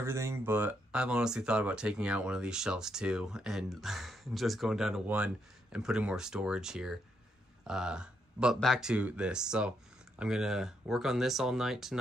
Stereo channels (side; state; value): both; normal; correlation 0.78